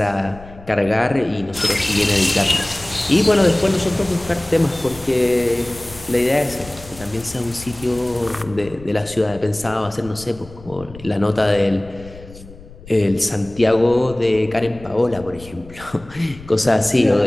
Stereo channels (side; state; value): left; noise; rumble, 19 dB below the sound